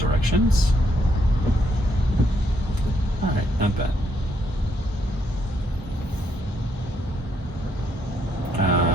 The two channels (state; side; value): normal; both; correlation 0.74